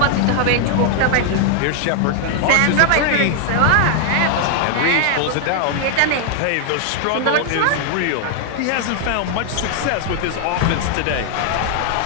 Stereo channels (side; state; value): both; different; correlation 0.00